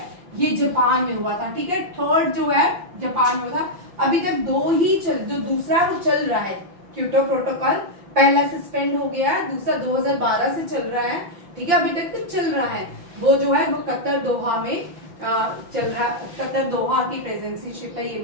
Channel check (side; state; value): left; late; 5.9 ms